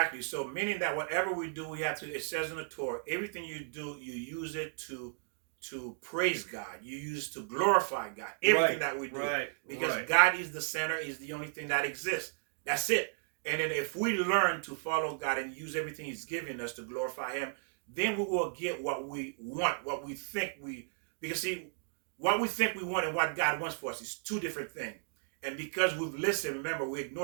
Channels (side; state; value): left; silent; digital silence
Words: So meaning that whatever we do, we have to, it says in the Torah, everything you do, you use it to praise God. You use it to glorify God. Everything that we do. Right. Because God is the center, is the only thing that exists. That's it. And then if we learn to follow God and use everything He's given us to glorify Him, then we will get what we want, what we think because see, what we think we want and what God wants for us is two different things. And because we've listened, remember, we